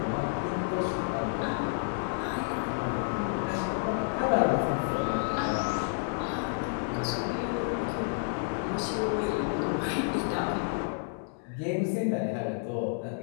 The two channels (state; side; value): silent; right; 58 dB below the other